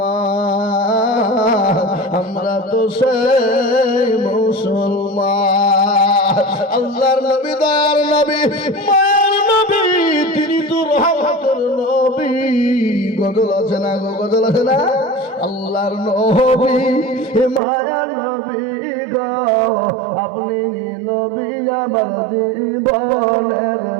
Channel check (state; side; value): drops out; left; at 17.6 s